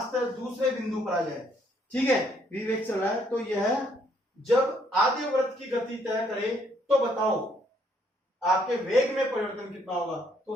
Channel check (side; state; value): both; normal; correlation 0.68